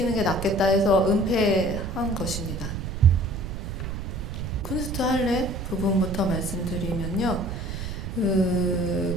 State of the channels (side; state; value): right; noise; rumble, 6 dB below the sound